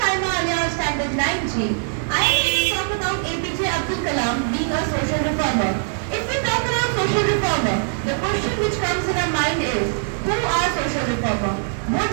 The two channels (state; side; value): silent; left; 61 dB below the other